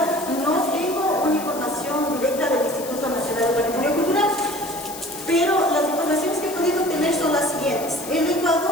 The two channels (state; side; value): noise; left; hiss, 12 dB below the sound